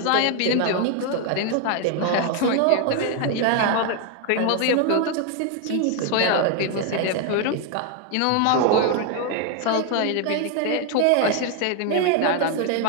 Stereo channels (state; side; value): different; both; correlation 0.00